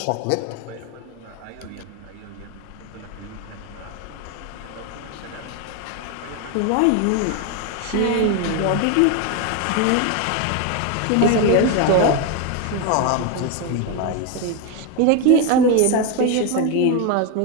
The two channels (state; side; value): different; both; correlation 0.02